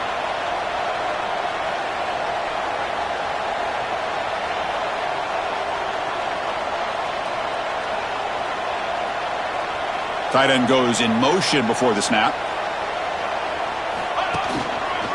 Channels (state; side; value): identical; both; correlation 1.00